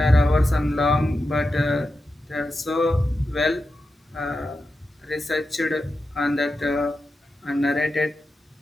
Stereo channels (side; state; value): both; normal; correlation 0.90